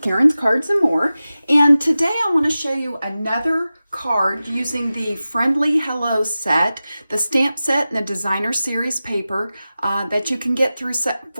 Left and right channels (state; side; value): inverted; both; correlation -0.95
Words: Karen's Cards and More, and today I want to show you another card using the Friendly Hello set, the stamp set and the designer series paper that you can get through